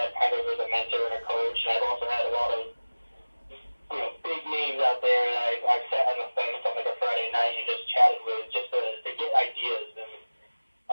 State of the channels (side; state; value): both; inverted; correlation -1.00